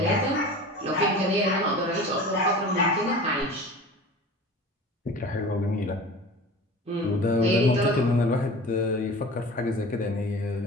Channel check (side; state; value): both; normal; correlation 0.37